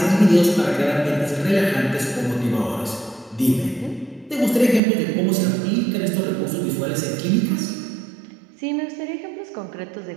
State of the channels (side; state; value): left; drops out; at 4.8 s